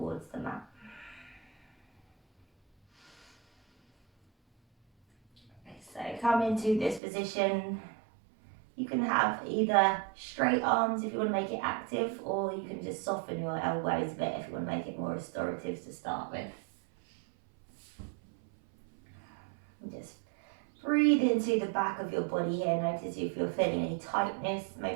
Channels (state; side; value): drops out; left; at 7.0 s